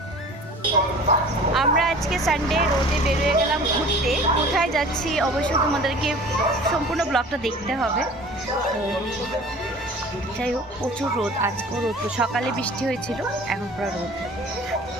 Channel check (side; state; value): both; normal; correlation 0.44